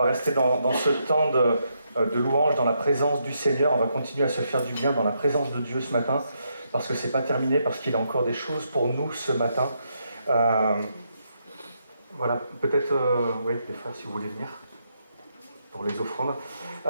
rester dans ce temps de louange, dans la présence du Seigneur. On va continuer à se faire du bien dans la présence de Dieu ce matin, parce que c'est pas terminé, parce qu'il a encore des choses pour nous ce matin. Voilà, peut-être, oui, les frères, si vous voulez venir pour les offrandes.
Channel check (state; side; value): inverted; both; correlation -0.79